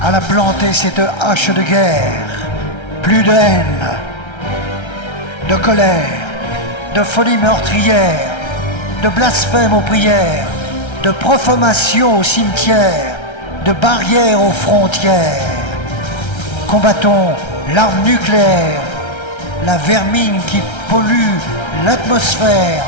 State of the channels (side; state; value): right; late; 1.3 ms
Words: à la planter cette hache de guerre. Plus de haine, de colère, de folie meurtrière, de blasphème aux prières, de profanation au cimetière, de barrières aux frontières. Combattons l'arme nucléaire, la vermine qui pollue l'atmosphère,